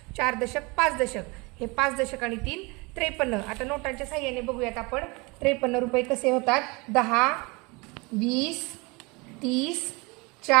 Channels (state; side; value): quieter; left; 26.8 dB